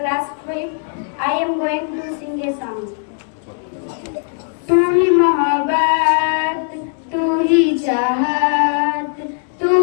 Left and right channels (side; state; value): right; silent; 64 dB below the other